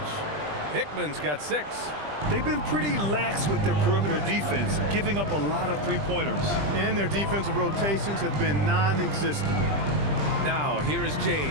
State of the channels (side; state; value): left; late; 20 ms